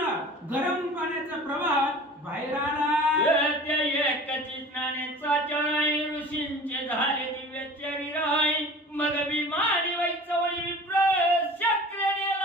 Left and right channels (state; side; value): normal; both; correlation 0.41